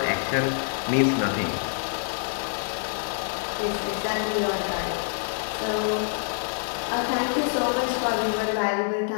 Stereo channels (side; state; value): right; silent; 61 dB below the other